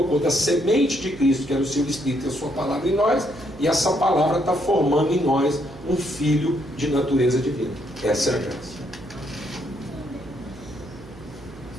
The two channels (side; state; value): right; noise; hum, 19 dB below the sound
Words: da semente de Cristo, que era o seu Espírito e a sua palavra em nós, e essa palavra está formando em nós um filho de natureza divina. Essa é a graça.